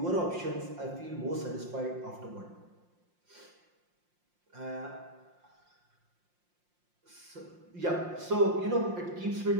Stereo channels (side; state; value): left; late; 5.7 ms